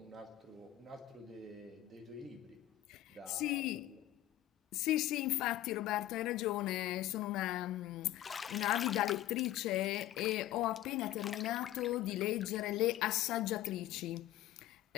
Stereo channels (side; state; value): right; quieter; 14.2 dB